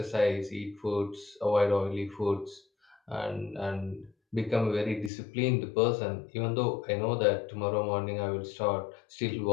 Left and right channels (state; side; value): drops out; right; at 5.1 s